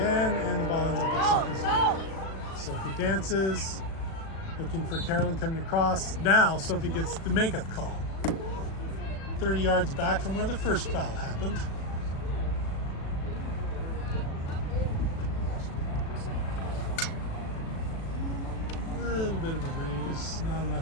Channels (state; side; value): late; right; 36 ms